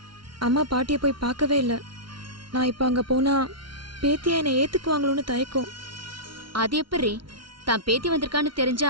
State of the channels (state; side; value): late; left; 0.73 ms